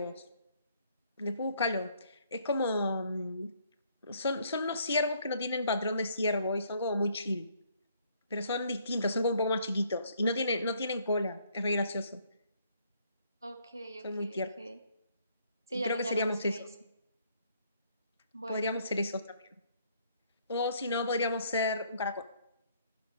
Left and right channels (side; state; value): both; inverted; correlation -0.66